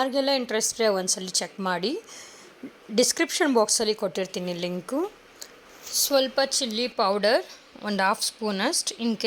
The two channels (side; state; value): both; identical; correlation 1.00